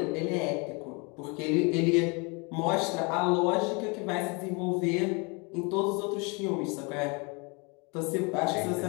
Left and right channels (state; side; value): quieter; right; 30.7 dB